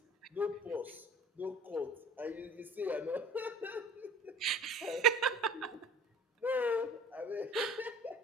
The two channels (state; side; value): normal; both; correlation 0.44